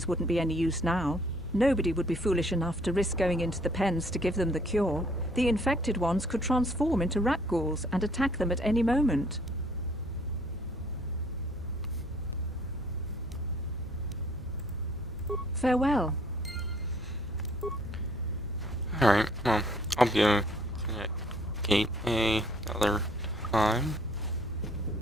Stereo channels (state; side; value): noise; left; hum, 17 dB below the sound